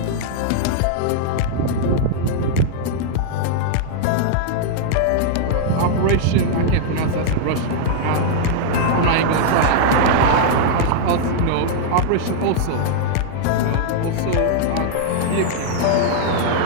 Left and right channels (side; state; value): both; different; correlation -0.01